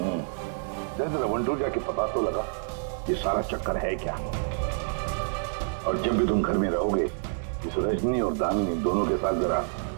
जरा वंटूर जाके पता तो लगा ये सारा चक्कर है क्या। और जब भी तुम घर में रहोगे, इस रजनी और दामिनी दोनों के साथ जरा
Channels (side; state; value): left; silent; 59 dB below the other